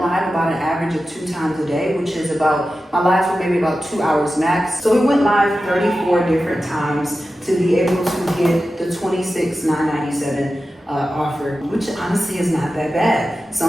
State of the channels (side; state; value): both; normal; correlation 0.93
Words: about an average of 2 times a day, which is my lives were maybe about 2 hours max. So we went live 34 different times to be able to get the $26,997 offer, which honestly is not that bad.